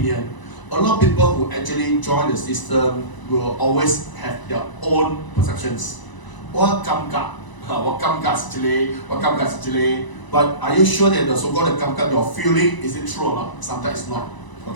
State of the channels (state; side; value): late; right; 1.0 ms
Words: A lot of people who actually join the system will always have their own perceptions. What kamka? What kamka actually? But are you sure that the so-called kamka, your feeling, is it true or not? Sometimes it's not.